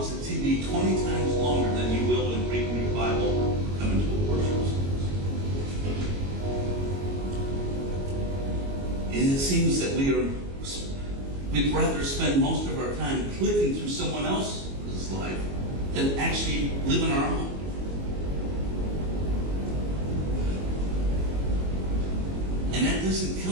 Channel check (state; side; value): late; left; 22 ms